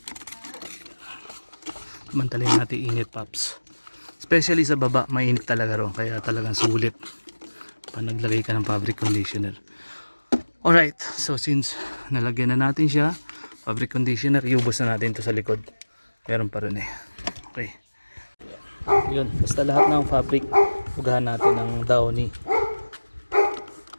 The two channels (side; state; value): both; inverted; correlation -1.00